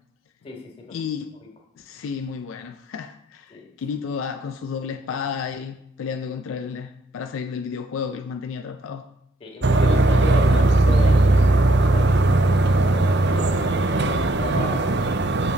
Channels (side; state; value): both; normal; correlation 0.69